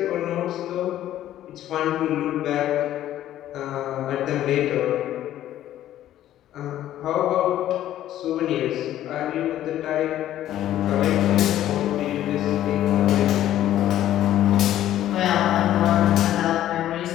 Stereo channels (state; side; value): quieter; right; 12.6 dB